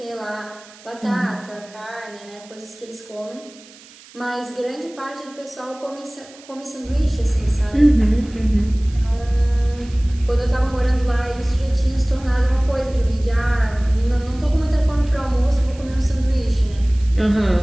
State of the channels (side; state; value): right; noise; hiss, 22 dB below the sound